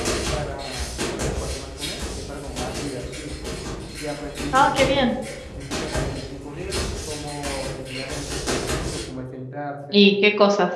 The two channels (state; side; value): identical; both; correlation 1.00